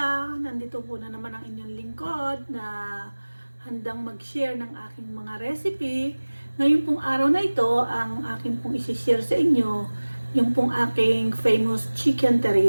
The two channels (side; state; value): both; inverted; correlation -1.00